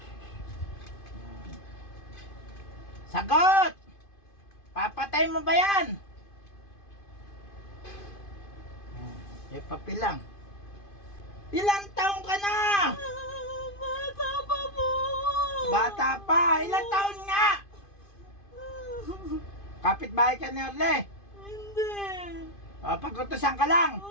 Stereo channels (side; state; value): right; late; 2.5 ms